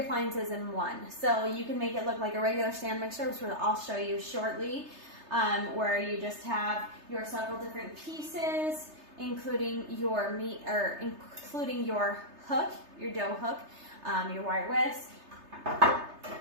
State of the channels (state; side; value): late; left; 3.3 ms